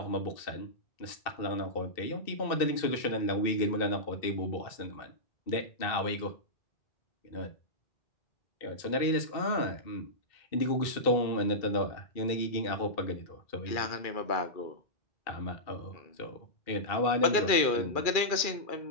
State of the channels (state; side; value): late; right; 2.4 ms